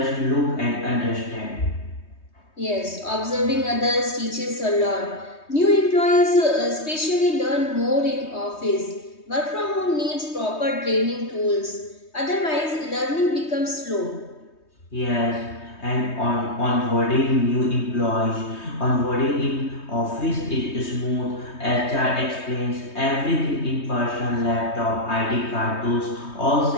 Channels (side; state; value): right; late; 3.2 ms